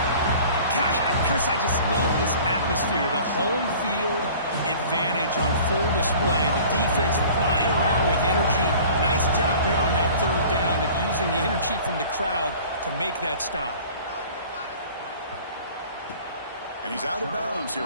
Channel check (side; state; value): both; inverted; correlation -0.46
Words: Gosh, Chris, I just love this atmosphere. The home field advantage on full display. The defense flying around with energy. Nice job there on that third down of using the energy from the crowd to make that stop. And he's out of bounds